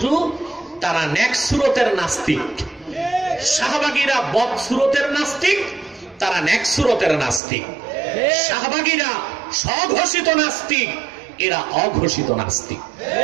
তারা নেক সুরতের নাস্তিক। শাহবাগীরা বদ সুরতের নাস্তিক, তারা নেক সুরতের নাস্তিক। শাহবাগীরা স্বঘোষিত নাস্তিক, এরা অঘোষিত নাস্তিক।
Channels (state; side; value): drops out; left; at 7.4 s